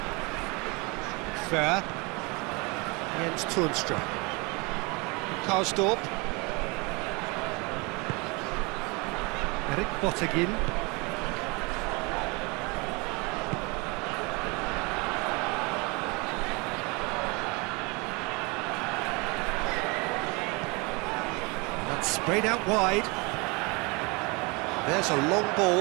Fair. Jens Toornstra. Karsdorp. Erik Bottegin. That's sprayed out wide. There's a long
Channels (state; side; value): quieter; left; 28.0 dB